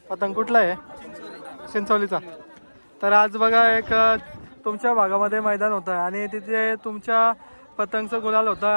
पतंग. कुठला आहे? चिंचोलीचा. तर आज बघा एक तुमच्या भागामध्ये मैदान होतं आणि तिथे तुमच्या पतंगचं गुलाल होतं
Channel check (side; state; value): both; inverted; correlation -1.00